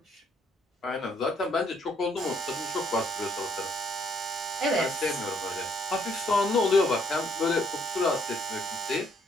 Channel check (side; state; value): both; normal; correlation 0.68